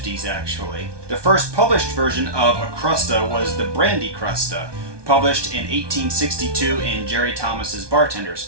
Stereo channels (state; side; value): late; left; 1.2 ms